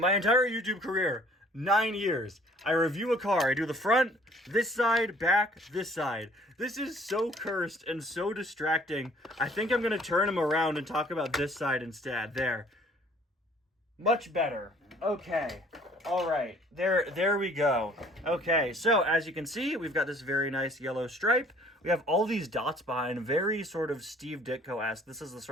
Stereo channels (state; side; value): normal; both; correlation 0.56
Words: entire YouTube career, 9 years, I review a car. I do the front, this side, back, this side. This is so cursed and so distracting. I think I'm going to turn him around and talk about this side instead. There. Much better. Okay. All right. There we go. Okay, so as you can see, we've got this very nice yellow stripe. We have all these dots behind, very sort of Steve Ditko-esque. This is the